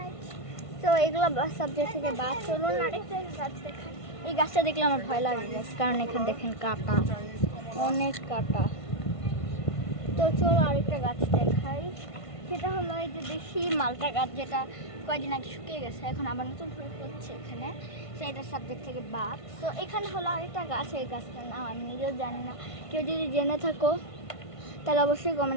তো এগুলো সাবজেক্ট থেকে বাদ। চলুন আরেকটা গাছ দেখাই। এই গাছটা দেখলে আমার ভয় লাগে কারণ এখানে দেখেন কাটা, অনেক কাটা। তো চলো আরেকটা গাছ দেখাই, সেটা হলো এই যে দেশি মালটা গাছ, যেটা কয়েকদিন আগে শুকিয়ে গেছে, এখন আবার নতুন ফুল হচ্ছে এখানে, সেইটা সাবজেক্ট থেকে বাদ। তো এখানে হলো আরেকটা গাছ, এই গাছটার নাম আমি নিজেও জানি না, কেউ যদি জেনে থাকো তাহলে অবশ্যই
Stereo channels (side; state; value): right; late; 1.5 ms